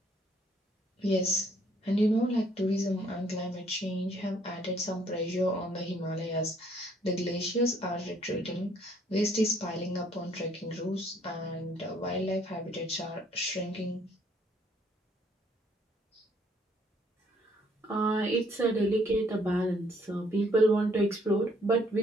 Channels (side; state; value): both; normal; correlation 0.64